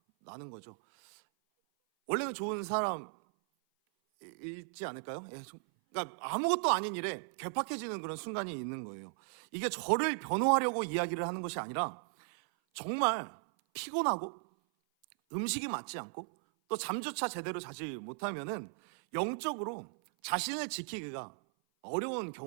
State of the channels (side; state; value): left; silent; 54 dB below the other